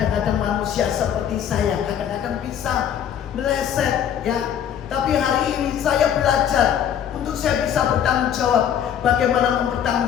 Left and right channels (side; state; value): right; quieter; 9.3 dB